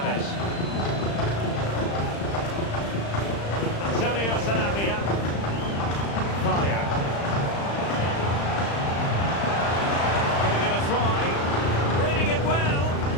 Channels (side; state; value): right; late; 35 ms